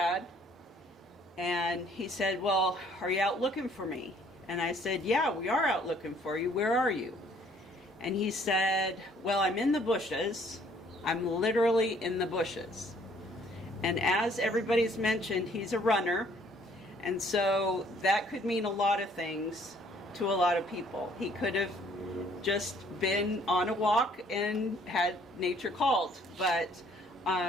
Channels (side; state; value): both; normal; correlation 0.61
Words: And he said, "Well, are you out looking for me?" And I said, "Yeah, we are out looking for you. Where are you?" And he said, "Well, I'm in the bushes. I'm literally in the bushes." And as everybody's mentioned, he's a runner. And so that could mean a lot of things to a lot of people. He could have just been on a walk and had nature called. But